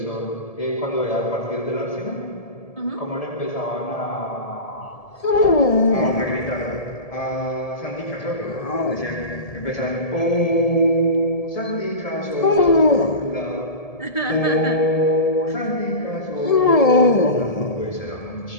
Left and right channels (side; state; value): right; late; 1.7 ms